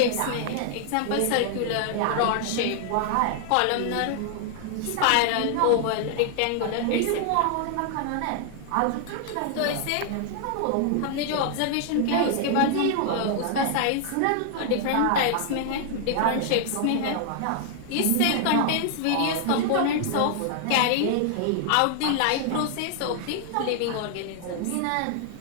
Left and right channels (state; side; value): different; both; correlation 0.00